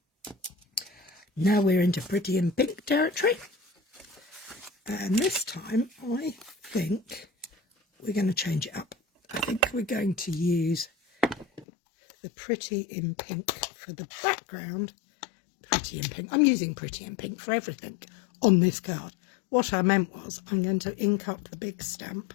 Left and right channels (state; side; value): drops out; right; at 11.7 s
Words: Now we're into pretty in pink territory. And this time I think we're going to change it up. I think we're going to use the pretty in pink for the background. Pretty in pink. I'm using pretty in pink for everything on this card. What I meant was I'm going to ink up the big stamp